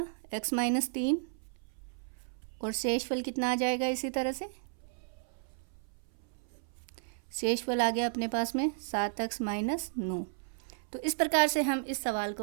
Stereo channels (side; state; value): left; silent; 56 dB below the other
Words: x - 3 और शेषफल कितना आ जाएगा इसी तरह से, शेषफल आ गया अपने पास में 7x माइनस 9। तो इस प्रकार से हम इस सवाल